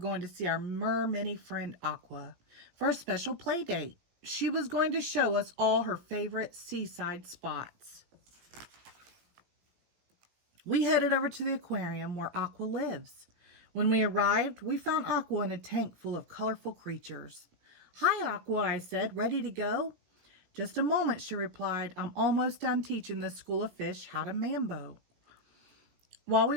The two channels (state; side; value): late; left; 17 ms